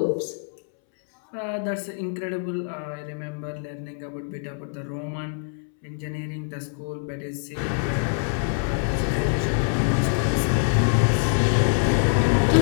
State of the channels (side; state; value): right; silent; 62 dB below the other